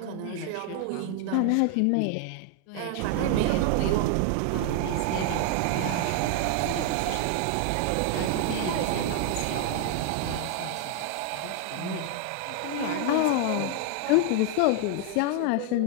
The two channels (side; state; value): both; different; correlation 0.00